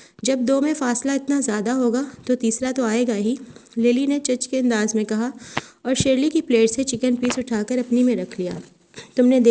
جب دو میں فاصلہ اتنا زیادہ ہوگا تو تیسرا تو آئے گا ہی، لیلی نے چچ کے انداز میں کہا، اور شرلی کی پلیٹ سے چکن پیس اٹھا کر اپنی میں رکھ لیا۔ تم نے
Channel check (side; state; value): both; identical; correlation 1.00